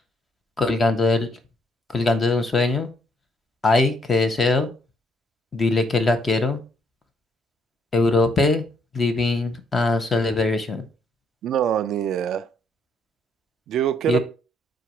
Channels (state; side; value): normal; both; correlation 0.72